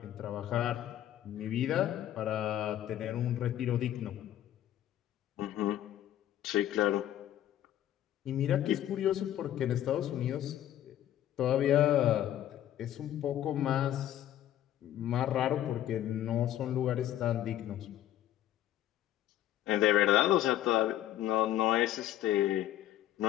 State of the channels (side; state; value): right; quieter; 12.2 dB